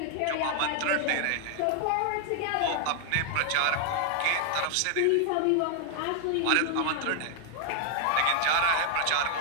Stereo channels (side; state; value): both; different; correlation 0.00